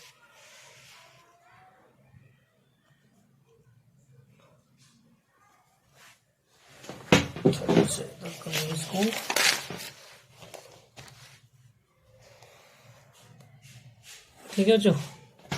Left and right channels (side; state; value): both; identical; correlation 1.00